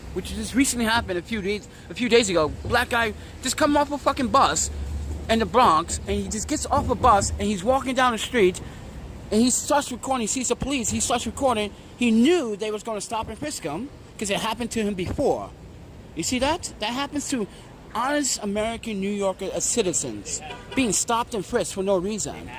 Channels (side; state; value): both; identical; correlation 1.00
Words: which just recently happened a few days ago. Black guy just come off a fucking bus in the Bronx, and he just gets off a bus and he's walking down the street, and he starts recording. He sees the police. He starts recording. He knew they was going to stop and frisk him because it happened to him before. You see that? That happens to honest American New Yorker citizens being stopped and frisked for no reason.